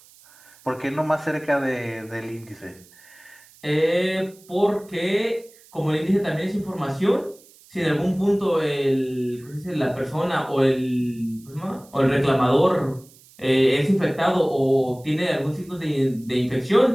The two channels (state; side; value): noise; right; hiss, 26 dB below the sound